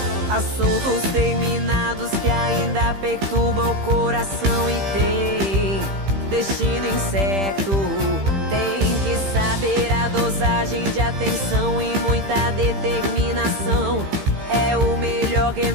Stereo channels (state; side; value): late; left; 15 ms